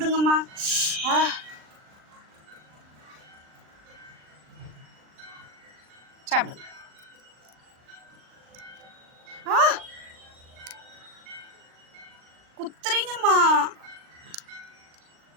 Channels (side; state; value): left; late; 39 ms